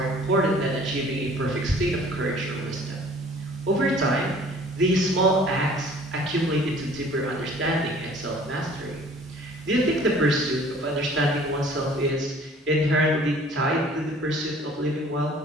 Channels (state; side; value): normal; both; correlation 0.51